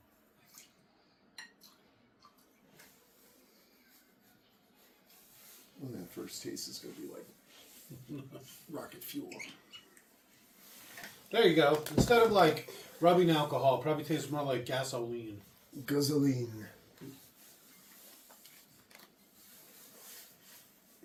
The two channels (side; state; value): both; identical; correlation 1.00